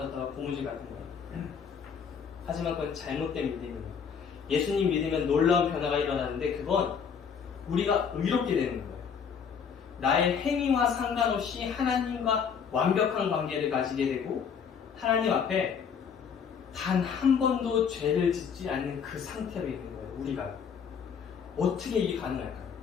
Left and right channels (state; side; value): quieter; right; 6.8 dB